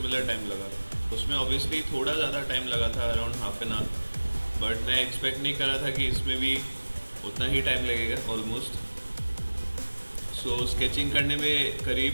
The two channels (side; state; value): both; inverted; correlation -1.00